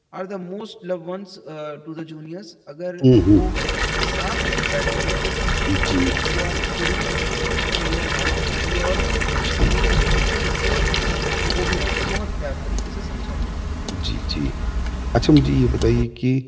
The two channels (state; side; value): identical; both; correlation 1.00